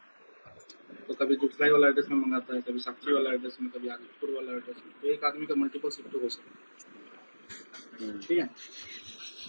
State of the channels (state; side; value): inverted; both; correlation -1.00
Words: तो कभी जुफ्लाई वाला एड्रेस में मंगाता है, कभी साक्षी वाला एड्रेस में, कभी आदिपुर वाला एड्रेस में। तो एक आदमी का मल्टीपल शिप टू हो सकता है। ठीक है